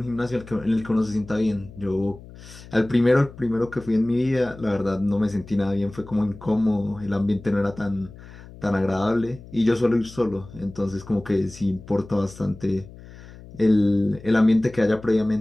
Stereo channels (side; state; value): left; noise; hum, 18 dB below the sound